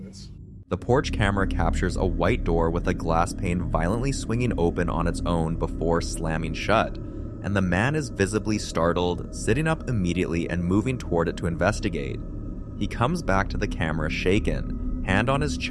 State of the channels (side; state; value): both; identical; correlation 1.00